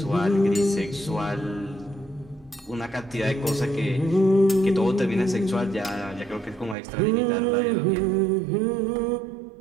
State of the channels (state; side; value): drops out; left; at 6.8 s